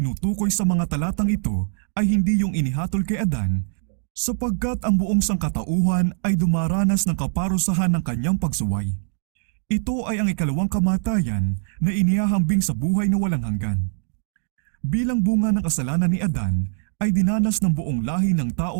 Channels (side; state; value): left; silent; digital silence